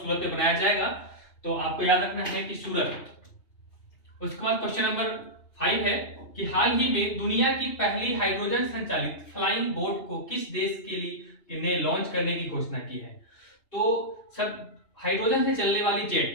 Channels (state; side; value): late; right; 2.8 ms